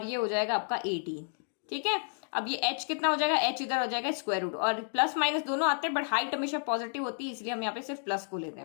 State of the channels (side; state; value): right; silent; digital silence